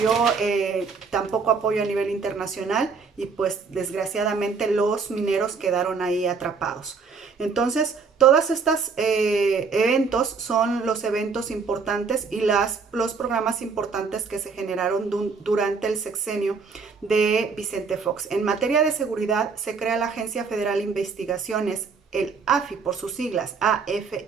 tampoco apoyo a nivel internacional y pues desgraciadamente los mineros quedaron ahí atrapados. Entonces, todos estos eventos son los eventos importantes y los programas importantes que se generaron durante el sexenio de Vicente Fox. En materia de seguridad, se crea la Agencia Federal de Investigaciones, el AFI por sus siglas,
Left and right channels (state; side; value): quieter; left; 5.1 dB